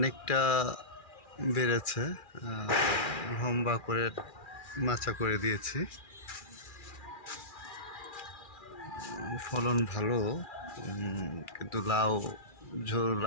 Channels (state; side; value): late; right; 2.4 ms